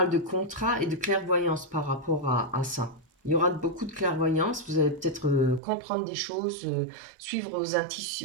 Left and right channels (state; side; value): drops out; left; at 5.6 s